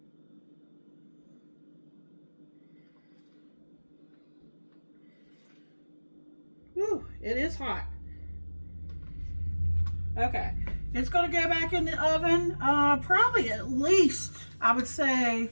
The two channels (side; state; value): both; inverted; correlation -1.00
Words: Whew, it is hot. Okay. It's going to go back in the oven, probably at least, I would say,